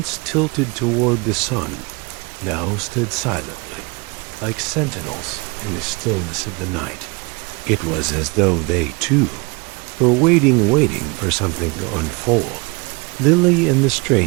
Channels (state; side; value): quieter; left; 28.3 dB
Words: tilted toward the sun, now stood silently, like sentinels in the stillness of the night. It was as though they, too, were waiting for something to unfold. Lily and the